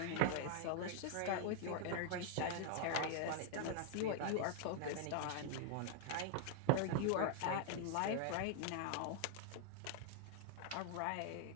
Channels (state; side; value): different; both; correlation 0.00